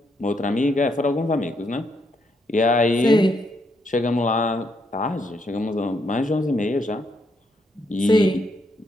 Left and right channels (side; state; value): both; normal; correlation 0.76